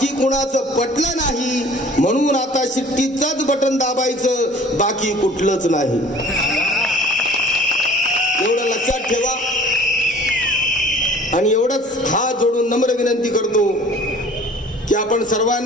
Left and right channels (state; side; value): normal; both; correlation 0.49